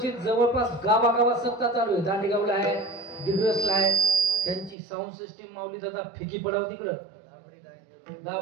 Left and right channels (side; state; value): left; drops out; at 4.8 s